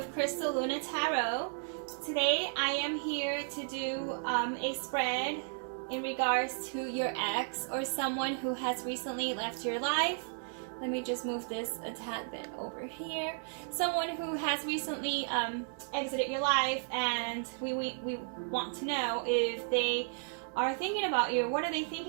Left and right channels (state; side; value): silent; left; digital silence